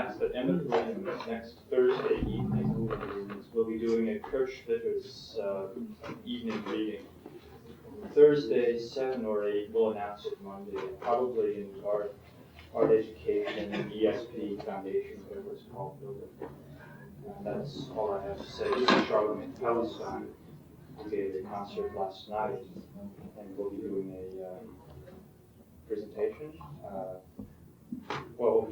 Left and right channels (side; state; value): both; identical; correlation 1.00